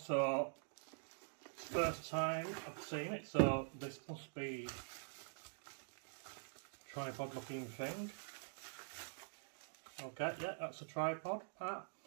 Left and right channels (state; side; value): silent; left; digital silence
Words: So first time I've seen it, so this must be a tripod looking thing. Okay, yeah, that's a tripod part.